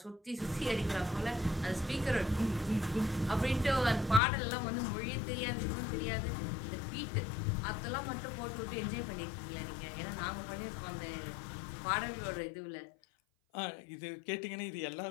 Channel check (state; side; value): drops out; right; at 4.2 s